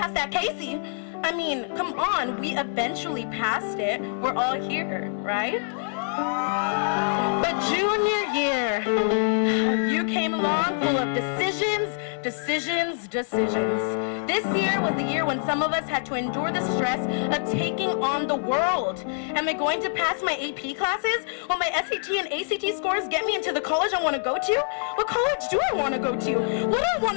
that Casey. I mean, come on, we eventually passed it. We're all here, right? But junior year, you came along full of decisions. This year was the year when some of us had to endure the stress of taking on the world. Am I going to pass my AP classes? Will my SAT and ACT scores get me into the college I want to go to? What college do I want to go to? What do I want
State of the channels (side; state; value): right; silent; digital silence